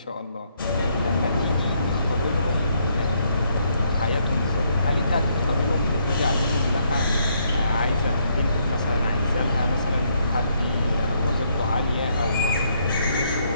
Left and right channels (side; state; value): both; inverted; correlation -0.72